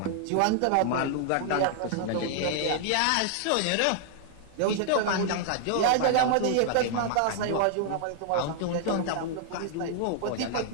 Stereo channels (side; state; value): both; different; correlation -0.01